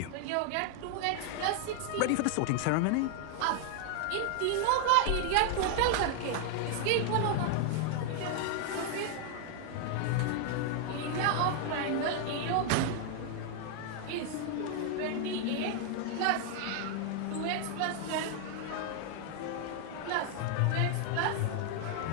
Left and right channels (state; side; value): different; both; correlation 0.00